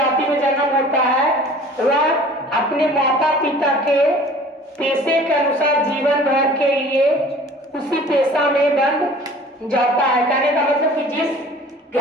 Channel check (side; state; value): both; normal; correlation 0.47